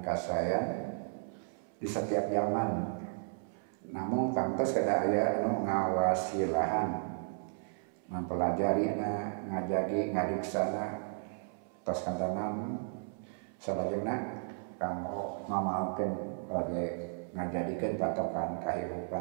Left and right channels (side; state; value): left; silent; 55 dB below the other